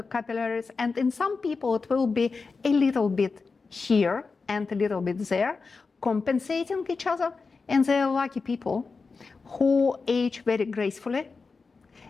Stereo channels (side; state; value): right; quieter; 4.5 dB